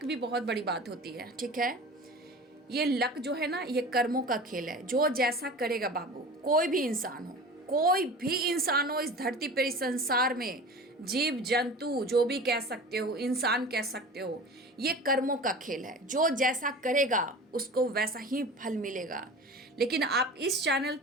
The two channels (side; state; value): both; normal; correlation 0.37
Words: भी बहुत बड़ी बात होती है। ठीक है। ये लक जो है ना, ये कर्मों का खेल है। जो जैसा करेगा बाबू, कोई भी इंसान हो, कोई भी इंसान हो इस धरती पर, इस संसार में, जीव जंतु जो भी कह सकते हो, इंसान कह सकते हो, ये कर्मों का खेल है। जो जैसा करेगा उसको वैसा ही फल मिलेगा। लेकिन आप इस चैनल